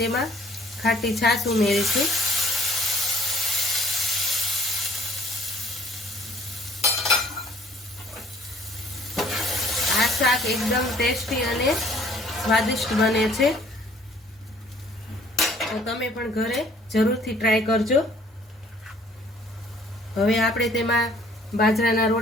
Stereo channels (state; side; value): normal; both; correlation 0.58